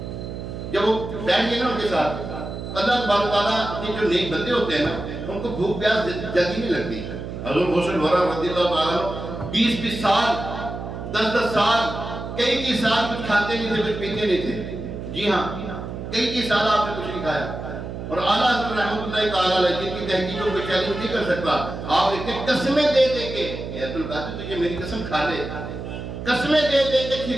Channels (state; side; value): noise; right; hum, 8 dB below the sound